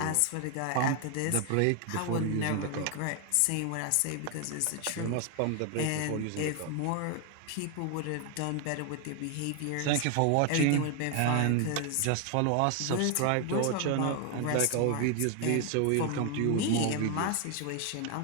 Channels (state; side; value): different; both; correlation 0.01